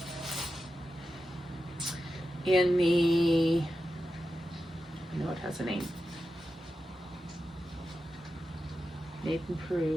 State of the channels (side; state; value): both; normal; correlation 0.90